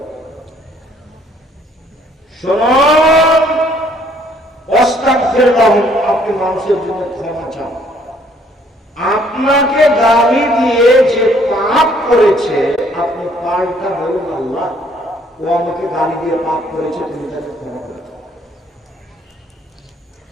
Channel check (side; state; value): both; normal; correlation 0.63